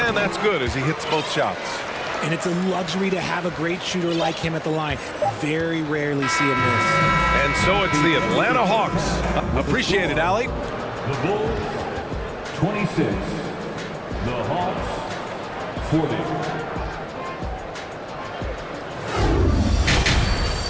that's good as he hits both shots. And it's a luxury to have a great shooter like him at the line. Very rarely see him miss. And so it's the Atlanta Hawks. Appreciate it, Allie. The Bulls, 26. The Hawks, 40.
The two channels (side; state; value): both; identical; correlation 1.00